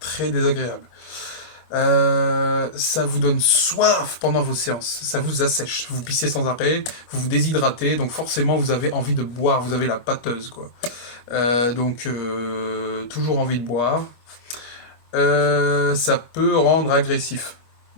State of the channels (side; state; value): right; late; 25 ms